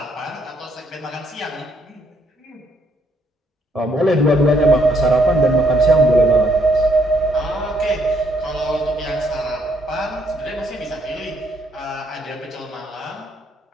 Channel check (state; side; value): normal; both; correlation 0.71